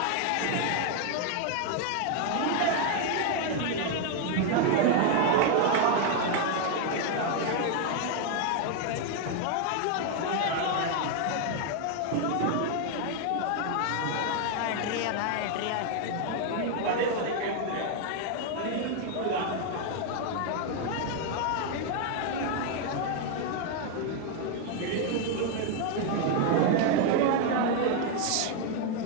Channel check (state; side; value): different; both; correlation 0.01